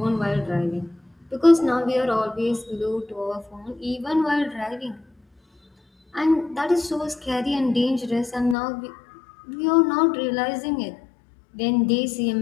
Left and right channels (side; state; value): right; drops out; at 8.6 s